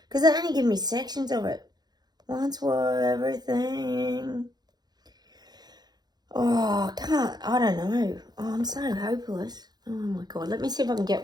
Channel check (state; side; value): late; left; 0.20 ms